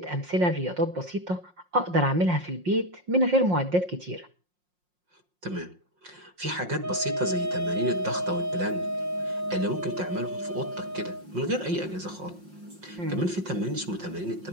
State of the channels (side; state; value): left; late; 5.6 ms